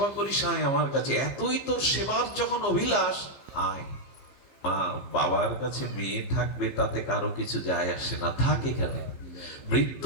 করিস, আয় আমার কাছে, এতই তোর সেবার যখন অভিলাষ, আয়। মা, বাবার কাছে মেয়ে থাকবে তাতে কারো কিছু যায় আসে না, থাক এখানে।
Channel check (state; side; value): late; right; 15 ms